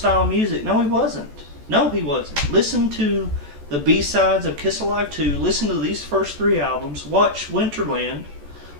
music? No, he wasn't. No, he wasn't. Listen to the B-sides of Kiss Alive 2, listen to these first 3 albums, watch Winterland,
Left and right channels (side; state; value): left; late; 14 ms